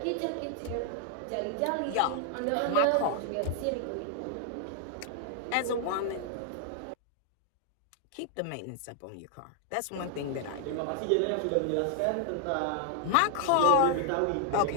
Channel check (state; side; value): different; both; correlation 0.00